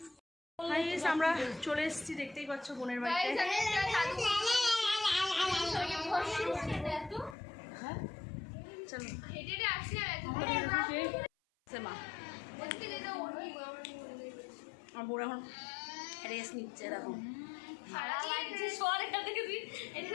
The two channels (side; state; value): right; drops out; at 7.4 s